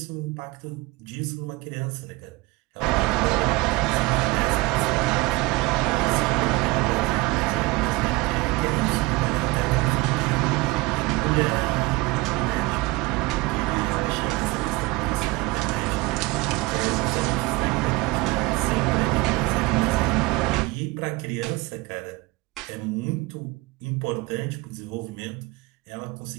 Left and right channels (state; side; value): quieter; left; 22.6 dB